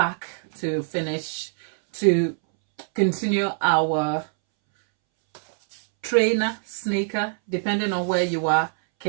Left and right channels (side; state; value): left; silent; 63 dB below the other